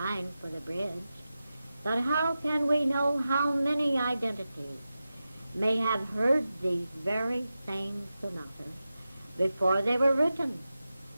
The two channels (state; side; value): inverted; both; correlation -0.92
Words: for the bridge. But how can we know how many identities may have heard these very same sonatas before they were written?